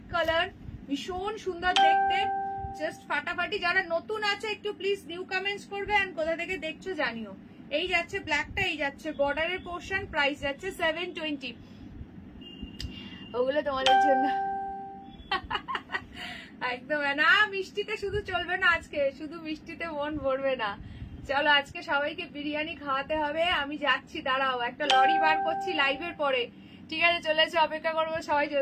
কালার, ভীষণ সুন্দর দেখতে, জাস্ট ফাটাফাটি। যারা নতুন আছে একটু প্লিজ নিউ কমেন্টস করবে, এন্ড কোথা থেকে দেখছো জানিও। এই যাচ্ছে ব্ল্যাকটা, এই যাচ্ছে বর্ডারের পোর্শন, প্রাইস যাচ্ছে 720। ওগুলো তোমাদের জন্য একদম না। মিষ্টিতে শুধু চলবে না, আজকে শুধু মিষ্টিতে মন ভরবে না। চলো, আজকে সবাইকে বিরিয়ানি খাওয়াতে হবে। আমি যাচ্ছি, দাঁড়াও, একটা লরি বার করছি লাইভের পরে, ঠিক আছে? চলে এসে অপেক্ষা করবো সবাই।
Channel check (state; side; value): identical; both; correlation 1.00